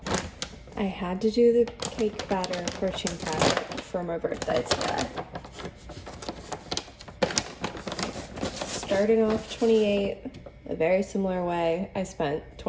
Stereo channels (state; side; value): identical; both; correlation 1.00